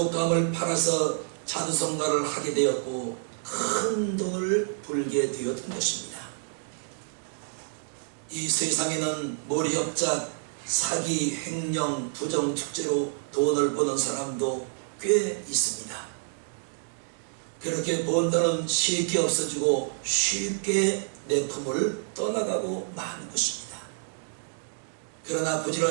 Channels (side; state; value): left; silent; 59 dB below the other